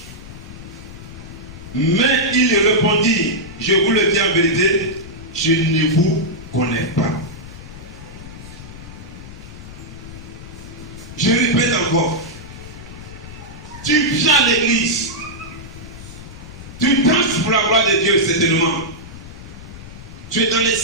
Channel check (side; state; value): left; noise; rumble, 14 dB below the sound